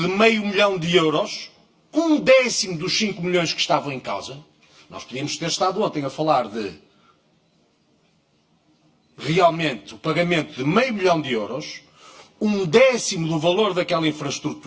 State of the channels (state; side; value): identical; both; correlation 1.00